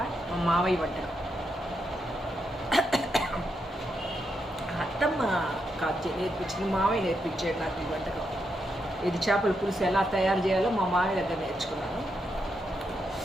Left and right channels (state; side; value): normal; both; correlation 0.82